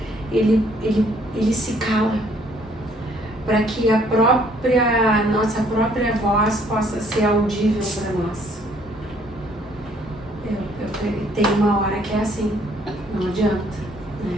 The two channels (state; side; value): normal; both; correlation 0.63